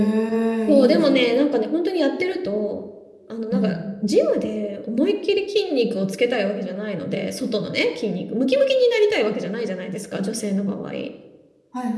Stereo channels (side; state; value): both; identical; correlation 1.00